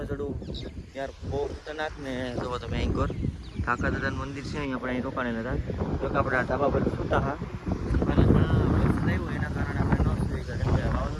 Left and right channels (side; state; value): both; identical; correlation 1.00